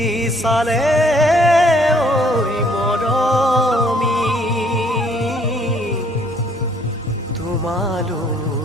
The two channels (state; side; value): normal; both; correlation 0.63